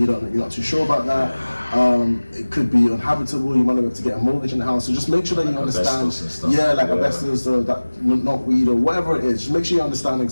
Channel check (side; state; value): both; inverted; correlation -1.00